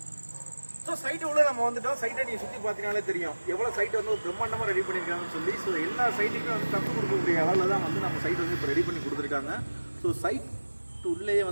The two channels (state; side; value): inverted; both; correlation -1.00